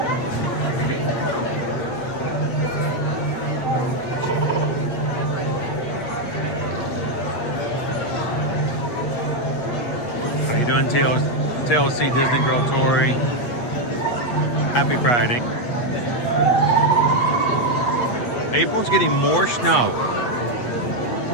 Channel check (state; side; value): late; right; 8.2 ms